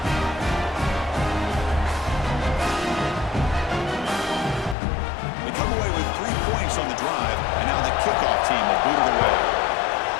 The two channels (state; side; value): drops out; right; at 4.8 s